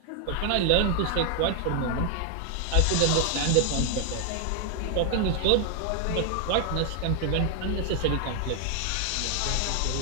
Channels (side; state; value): both; different; correlation 0.00